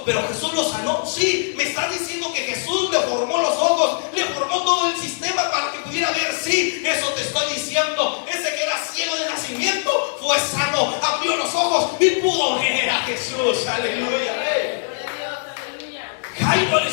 pero Jesús lo sanó. Sí, me estás diciendo que Jesús le formó los ojos, le formó todo el sistema para que pudiera ver. Sí, eso te estoy diciendo. Ese que era ciego de nacimiento fue sano, abrió los ojos y pudo ver a Jesús. Aleluya. Jairo, al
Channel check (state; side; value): silent; right; 61 dB below the other